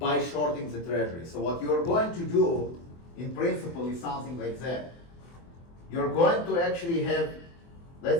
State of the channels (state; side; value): late; right; 24 ms